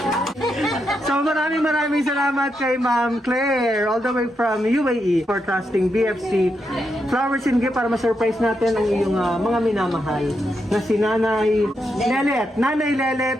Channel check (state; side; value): normal; both; correlation 0.83